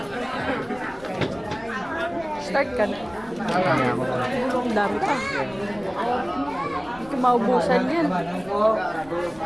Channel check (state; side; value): noise; left; rumble, 22 dB below the sound